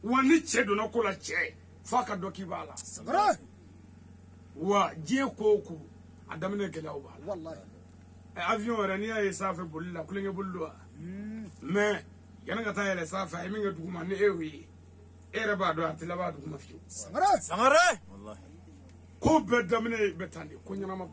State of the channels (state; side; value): identical; both; correlation 1.00